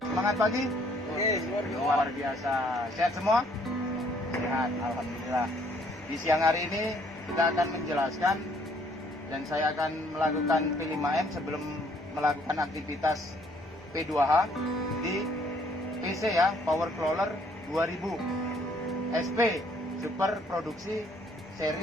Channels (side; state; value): right; noise; hum, 26 dB below the sound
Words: Semangat pagi. Luar biasa. Sehat semua? Sehat, alhamdulillah. Di siang hari ini kita akan menjelaskan dan saya akan melakukan P5M sebelum melakukan aktivitas P2H di PC ya, Power Crawler 2000 SP Super Produksi